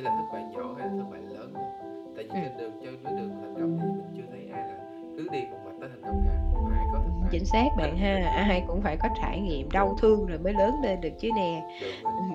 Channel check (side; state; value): both; identical; correlation 1.00